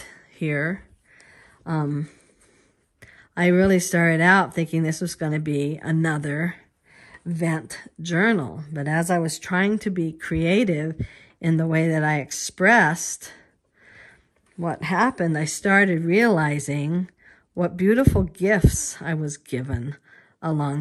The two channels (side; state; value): both; identical; correlation 1.00